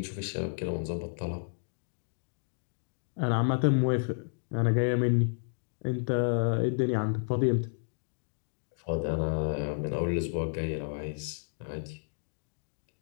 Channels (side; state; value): right; silent; digital silence